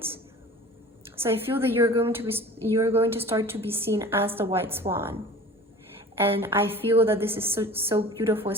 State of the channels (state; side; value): normal; both; correlation 0.41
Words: So I feel that you're going to start to be seen as the white swan. And I feel that this is so beautiful,